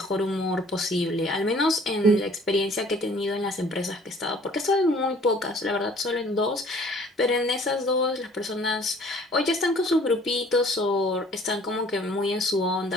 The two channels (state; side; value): normal; both; correlation 0.54